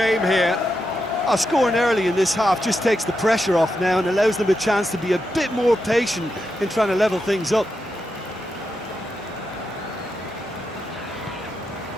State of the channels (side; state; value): both; normal; correlation 0.86